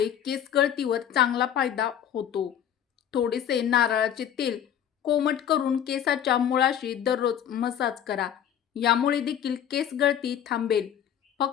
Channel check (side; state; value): right; quieter; 9.7 dB